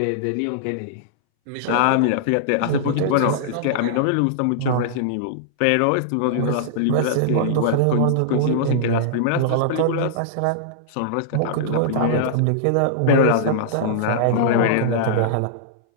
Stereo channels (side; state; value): both; different; correlation -0.02